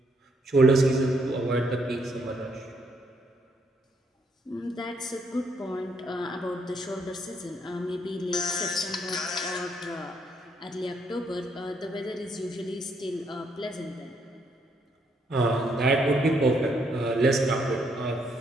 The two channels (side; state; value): both; normal; correlation 0.72